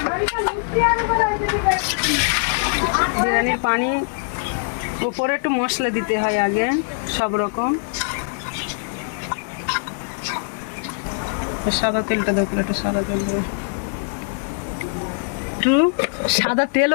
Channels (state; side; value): silent; right; 64 dB below the other